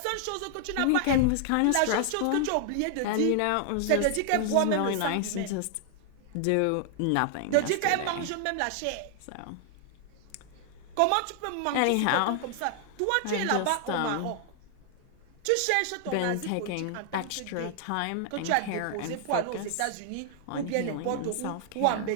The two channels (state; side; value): different; both; correlation 0.00